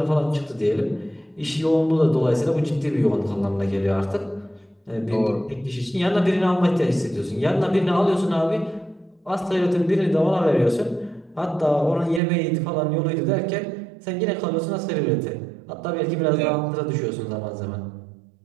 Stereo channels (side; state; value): left; drops out; at 12.2 s